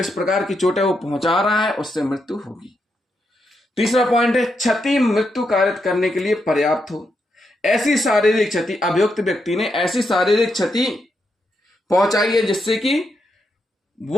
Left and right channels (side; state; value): both; normal; correlation 0.82